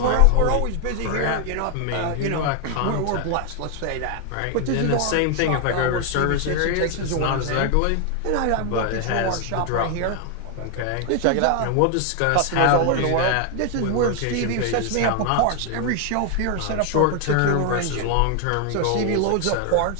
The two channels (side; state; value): both; different; correlation 0.01